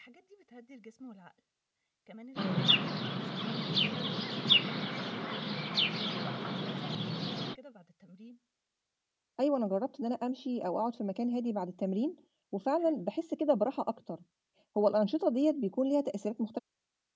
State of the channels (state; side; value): identical; both; correlation 1.00